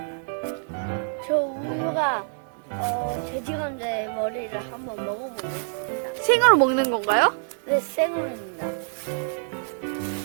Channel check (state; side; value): silent; left; digital silence